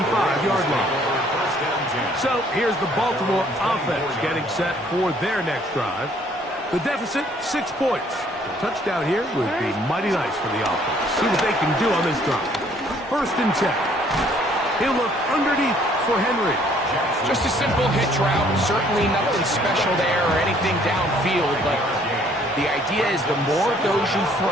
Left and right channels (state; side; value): normal; both; correlation 0.61